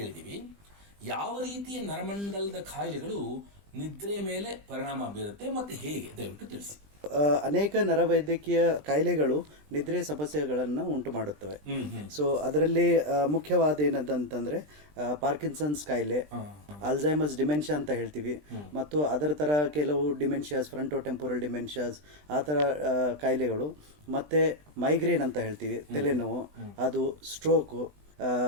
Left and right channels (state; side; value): late; left; 20 ms